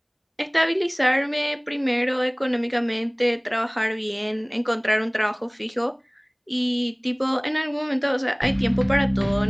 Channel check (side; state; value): both; identical; correlation 1.00